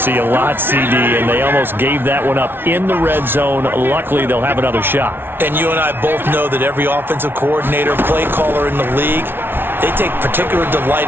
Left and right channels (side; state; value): left; late; 0.11 ms